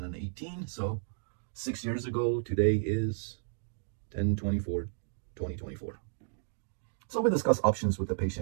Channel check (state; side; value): silent; left; digital silence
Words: So 6 years ago, today is 10/24/2024. So we discuss options with the